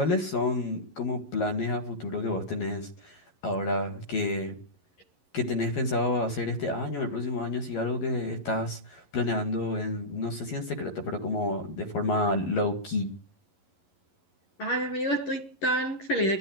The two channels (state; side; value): late; right; 11 ms